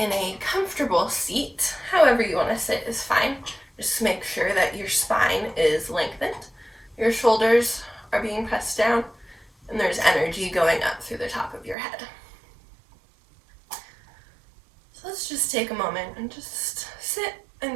in a comfortable seat. However you want to sit is fine. Just make sure that your spine is lengthened, your shoulders are being pressed down, and there's energy going up through the top of your head. So let's just take a moment and just sit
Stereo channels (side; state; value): left; drops out; at 11.8 s